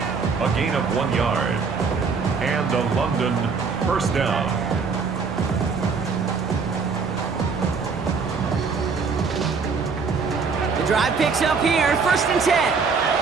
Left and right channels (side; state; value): left; quieter; 5.2 dB